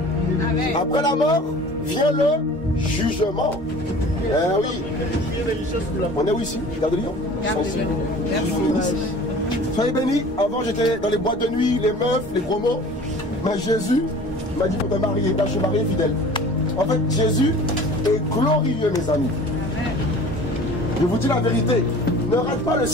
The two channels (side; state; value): both; normal; correlation 0.44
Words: Amen. Après la mort, vient le jugement. Oui. On est où ici? Gare de Lyon. Soyez bénis. Avant, j'étais dans les boîtes de nuit, les meufs, les gros mots. Mais Jésus m'a dit pour te marier. Là, je suis marié fidèle. En fait, Jésus est glorieux, mes amis. Je vous dis la vérité. Ne rate pas le